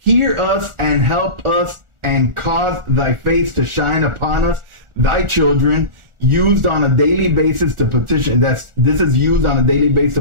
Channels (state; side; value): late; left; 1.4 ms